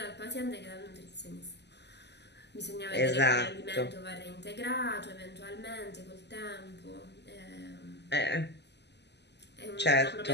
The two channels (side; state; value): right; late; 0.50 ms